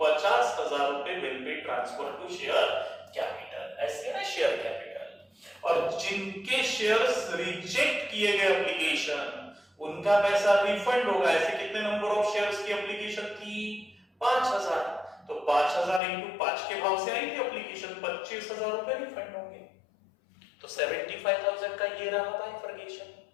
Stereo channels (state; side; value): drops out; right; at 16.0 s